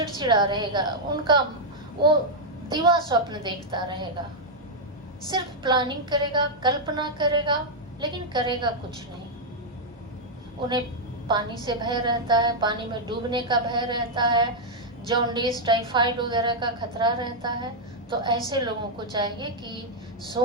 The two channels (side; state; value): both; normal; correlation -0.03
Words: रहेगा, उनका वो दिवा स्वप्न देखता रहेगा, सिर्फ प्लानिंग करेगा, कल्पना करेगा, लेकिन करेगा कुछ नहीं। उन्हें पानी से भय रहता है, पानी में डूबने का भय रहता है, जॉन्डिस, टाइफाइड वगैरह का खतरा रहता है। तो ऐसे लोगों को चाहिए कि